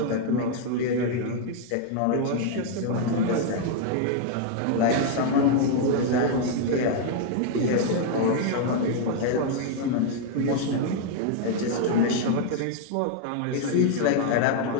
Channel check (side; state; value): both; different; correlation 0.00